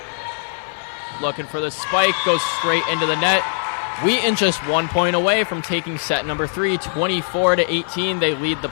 Looking for the spike. Goes straight into the net. Wheaton just 1 point away from taking set number 3. 24-18. They lead the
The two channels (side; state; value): right; silent; 57 dB below the other